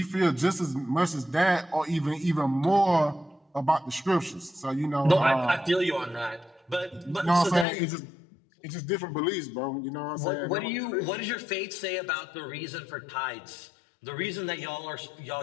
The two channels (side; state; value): right; drops out; at 7.7 s